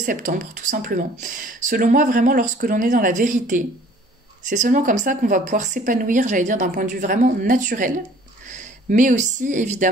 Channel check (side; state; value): both; normal; correlation 0.53